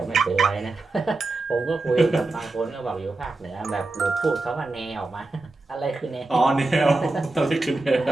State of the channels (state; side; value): quieter; left; 3.2 dB